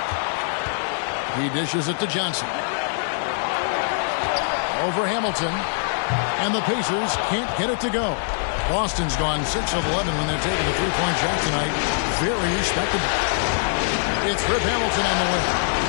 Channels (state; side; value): silent; right; digital silence